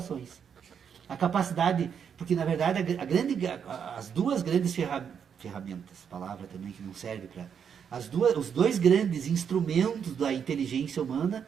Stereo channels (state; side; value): quieter; left; 7.5 dB